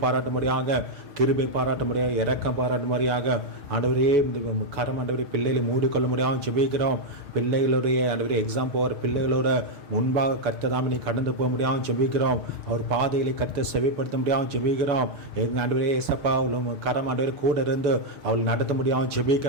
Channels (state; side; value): late; left; 6.6 ms